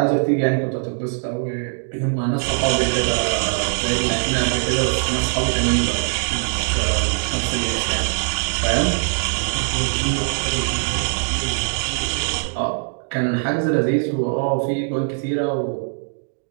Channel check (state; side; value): silent; left; digital silence